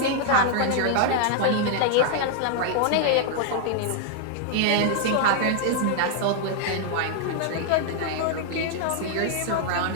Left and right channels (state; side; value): different; both; correlation 0.00